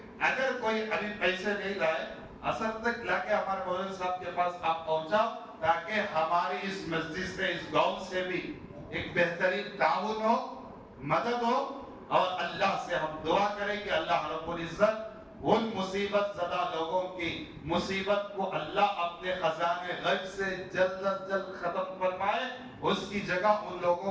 اگر کوئی ابھی پیسے نہیں لائے، اثر تک لا کے ہمارے مولانا صاحب کے پاس آپ پہنچاؤ، تاکہ ہماری اس مسجد سے، اس گاؤں سے بھی ایک بہترین تعاون ہو، مدد ہو، اور اللہ سے ہم دعا کریں کہ اللہ رب العزت ان مصیبت زدہ لوگوں کی مصیبت کو اللہ اپنے خزانے غیب سے جلد از جلد ختم فرمائے، اس کی جگہ ان لوگوں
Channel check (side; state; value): both; identical; correlation 1.00